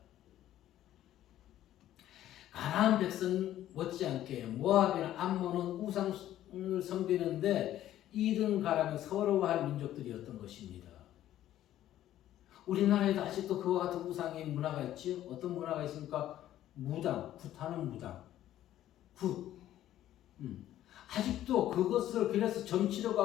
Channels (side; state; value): right; quieter; 12.8 dB